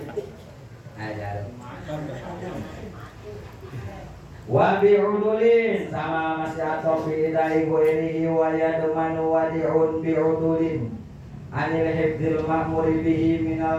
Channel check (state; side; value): identical; both; correlation 1.00